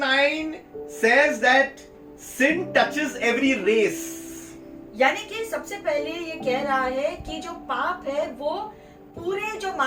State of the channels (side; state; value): both; identical; correlation 1.00